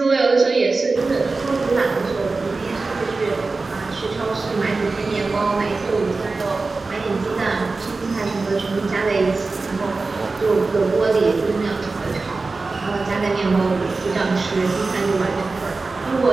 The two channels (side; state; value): left; quieter; 3.8 dB